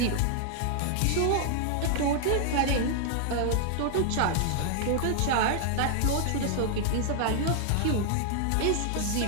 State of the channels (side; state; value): both; different; correlation -0.01